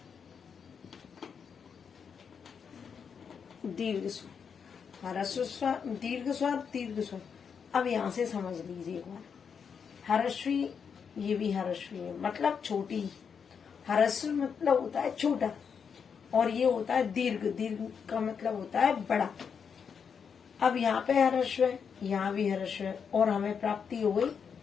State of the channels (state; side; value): quieter; right; 6.6 dB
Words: दीर्घ स्वर, ह्रस्व स्वर, दीर्घ स्वर। अब यहाँ से समझ लीजिए एक बार, ह्रस्वी, ये भी ह्रस्वी है मतलब छोटी। ह्रस्व मतलब होता है छोटा और ये होता है दीर्घ का मतलब होता है बड़ा। अब यहाँ पे ह्रस्व है, यहाँ भी ह्रस्व है और हमें प्राप्ति हो गई